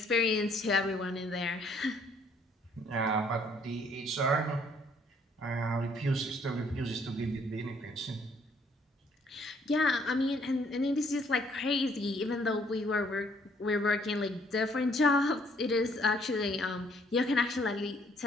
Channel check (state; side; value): normal; both; correlation 0.64